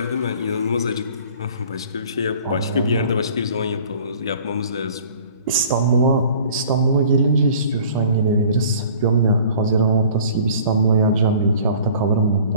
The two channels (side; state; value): both; inverted; correlation -0.49